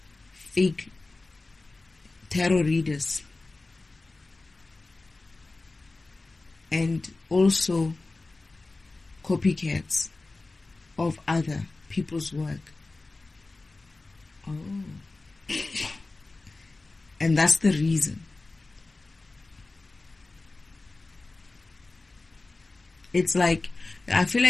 fake tarot readers and also copycats of other people's work. Oh. And that's the reason. It's like, I feel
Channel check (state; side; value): quieter; right; 3.3 dB